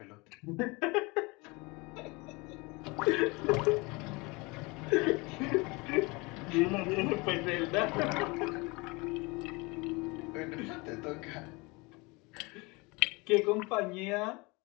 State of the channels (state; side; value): quieter; right; 26.1 dB